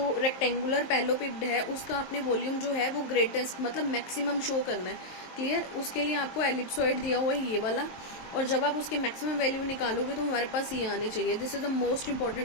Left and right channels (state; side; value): late; right; 23 ms